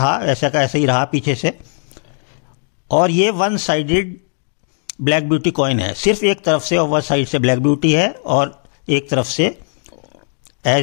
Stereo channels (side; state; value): right; silent; 68 dB below the other